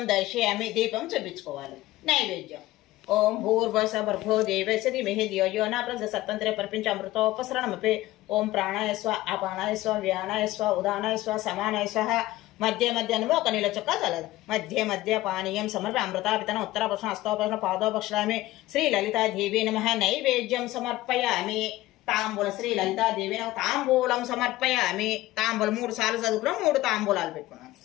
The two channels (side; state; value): right; quieter; 16.9 dB